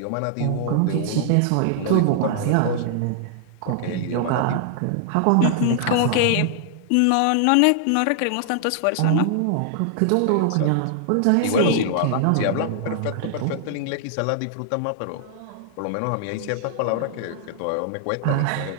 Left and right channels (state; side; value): different; both; correlation -0.01